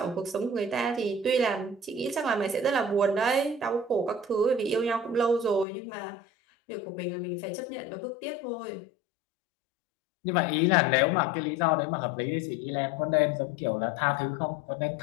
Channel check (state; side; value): drops out; right; at 5.7 s